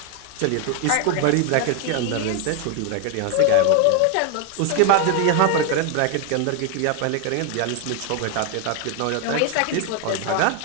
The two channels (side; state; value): both; different; correlation 0.01